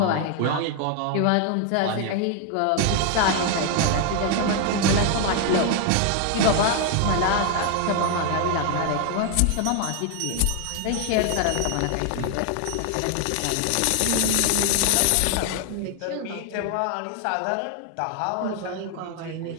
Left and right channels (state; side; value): different; both; correlation 0.00